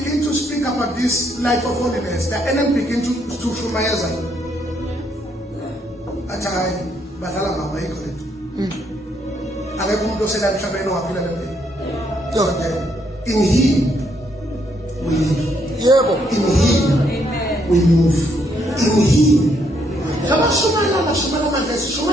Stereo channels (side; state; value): both; normal; correlation 0.73